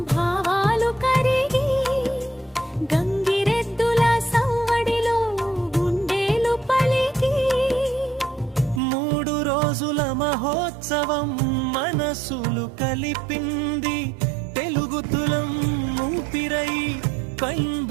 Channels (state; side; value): drops out; left; at 8.8 s